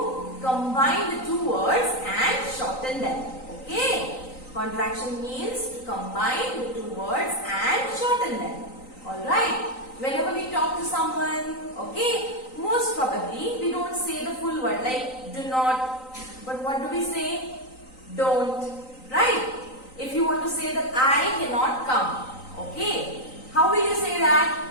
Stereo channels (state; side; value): late; right; 3.9 ms